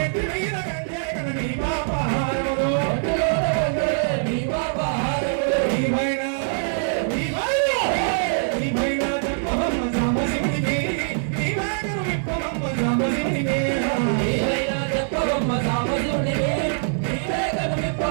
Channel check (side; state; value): left; silent; digital silence